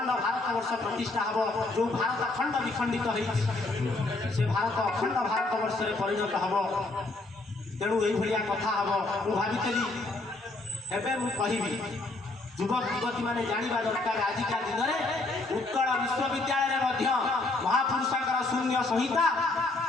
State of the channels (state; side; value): quieter; right; 3.1 dB